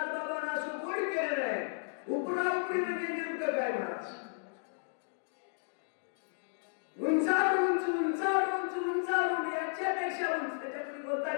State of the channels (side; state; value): right; silent; digital silence